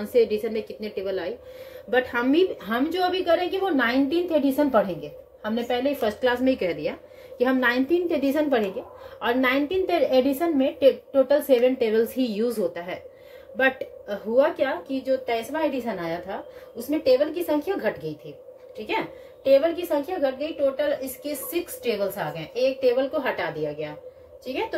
से एडिशन में कितने टेबल आई, बट हम जो अभी करेंगे वो 19th एडिशन पढ़ेंगे। हमने पहले ही फर्स्ट क्लास में ही कह दिया कि हम 19th एडिशन पढ़ेंगे, और 19th एडिशन में टोटल 7 टेबल्स ही यूज होता है। बट हुआ क्या कि जो 23वां एडिशन आया था, उसमें टेबल की संख्या घट गई थी। ठीक है, टेबल की संख्या घट गई, टोटल इसके 6 टेबल्स आ गए, एक टेबल को हटा दिया गया। ठीक है, तो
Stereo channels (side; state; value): both; identical; correlation 1.00